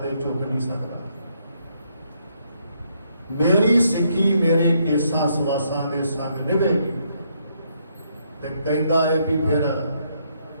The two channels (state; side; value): inverted; both; correlation -0.74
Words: ਝੁਕ ਨਹੀਂ ਸਕਦਾ। ਮੇਰੀ ਸਿੱਖੀ ਮੇਰੇ ਕੇਸਾਂ ਸਵਾਸਾਂ ਦੇ ਸੰਗ ਨਿਭੇਗੀ। ਤੇ ਕਹਿੰਦਾ ਹੈ ਵੀ ਫਿਰ